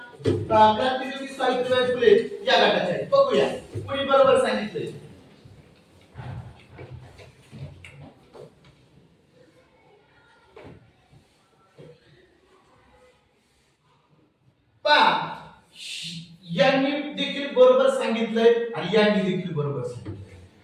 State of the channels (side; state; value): both; identical; correlation 1.00